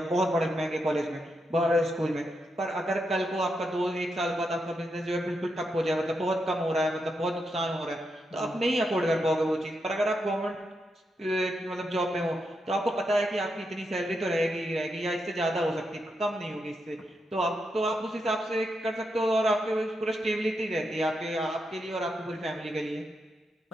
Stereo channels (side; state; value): both; normal; correlation 0.84